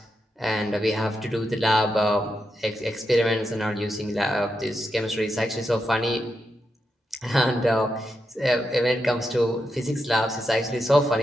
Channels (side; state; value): both; normal; correlation 0.86